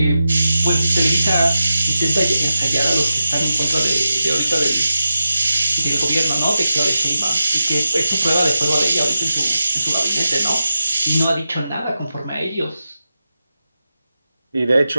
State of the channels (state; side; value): inverted; both; correlation -0.91